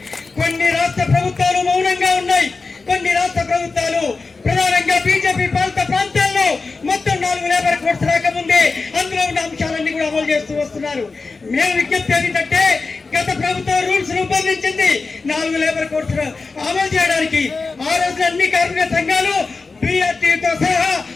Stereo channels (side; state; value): right; quieter; 4.1 dB